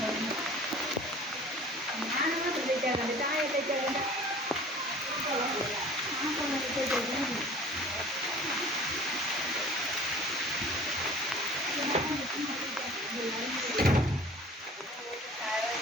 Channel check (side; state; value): both; normal; correlation 0.46